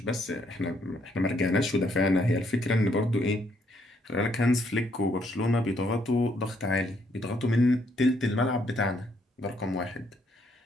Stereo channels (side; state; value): both; normal; correlation 0.71